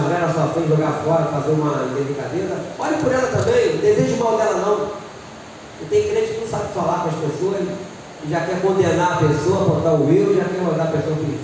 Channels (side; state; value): both; identical; correlation 1.00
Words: na sua frente, jogar fora, fazer uma delicadeza, olhe por ela também, não deseje mal dela não. E tem crente que não sabe falar com as pessoas, e já quer condenar a pessoa, apontar o erro, já quer mandar a pessoa para o